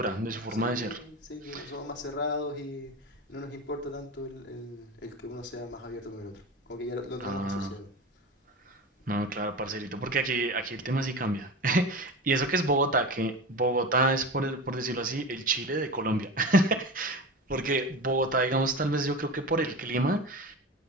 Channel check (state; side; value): normal; both; correlation 0.28